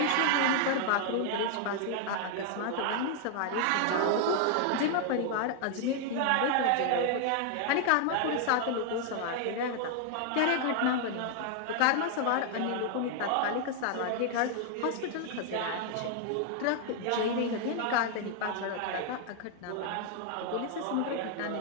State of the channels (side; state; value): both; different; correlation 0.00